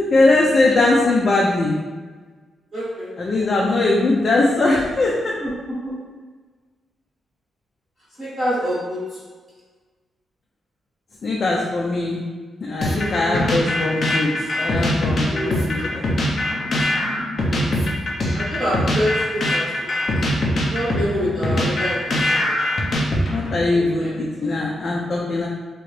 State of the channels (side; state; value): both; normal; correlation 0.84